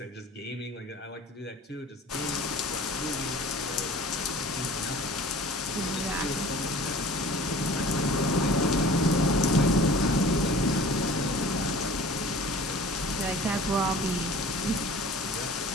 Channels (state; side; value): normal; both; correlation 0.44